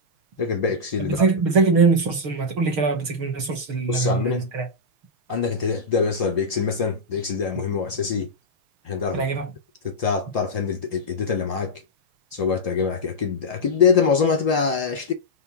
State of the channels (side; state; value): left; late; 6.5 ms